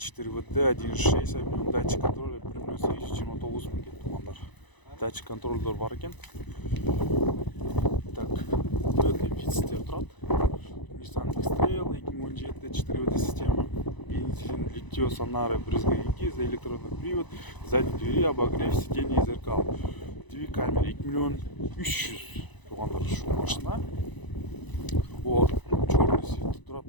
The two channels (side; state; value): right; late; 1.0 ms